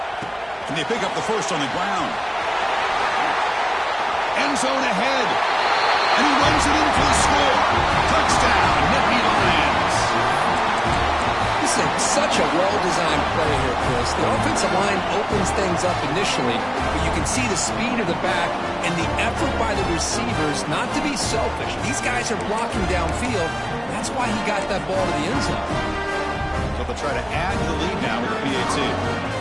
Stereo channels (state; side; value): identical; both; correlation 1.00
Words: And they pick up the first on the ground. End zone ahead. And he runs it in for the score. Touchdown, Nittany Lions. This is such a well-designed play here, Chris. The offensive line opens things up initially, but you can see the speed of the back and the effort by the receivers not to be selfish. These guys are blocking downfield. That's why he got that ball to the end zone. So they'll try to add to the lead now with the PAT.